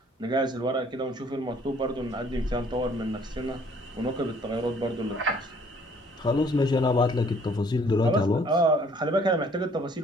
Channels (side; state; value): both; normal; correlation 0.59